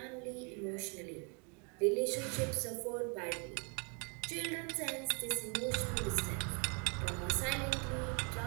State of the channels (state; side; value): quieter; left; 35.8 dB